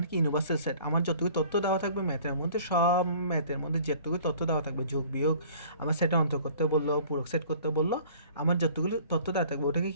কি ইউনিভার্সাল সেট। আমার যতটুকু তথ্য দেওয়া থাকবে ম্যাথের মধ্যে, সব ম্যাথের মধ্যে যতটুকু তথ্য দেওয়া থাকবে, যোগ বিয়োগ আমার সেটে অন্তর করতে বললো, পূরক সেট করতে বললো, আমার যতগুলি তথ্য দেওয়া থাকবে ওটাকে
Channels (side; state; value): both; inverted; correlation -0.50